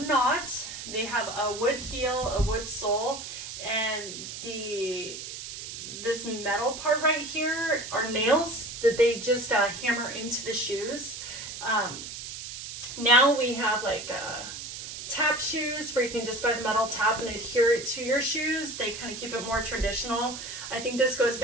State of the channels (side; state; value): right; noise; hiss, 9 dB below the sound